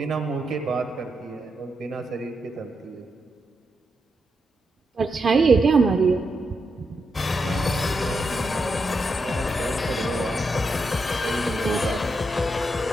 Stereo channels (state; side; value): normal; both; correlation 0.84